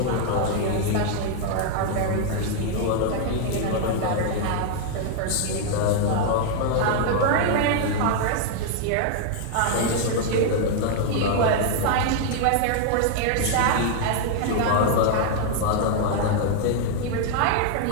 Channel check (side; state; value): both; different; correlation 0.00